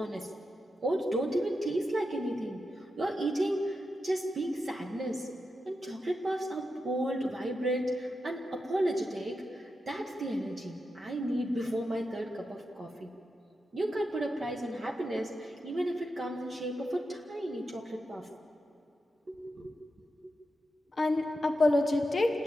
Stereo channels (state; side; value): normal; both; correlation 0.88